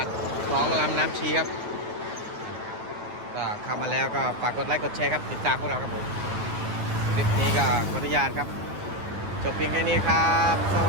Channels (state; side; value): late; left; 9.6 ms